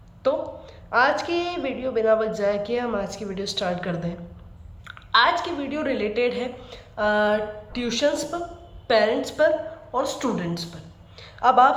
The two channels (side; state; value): both; identical; correlation 1.00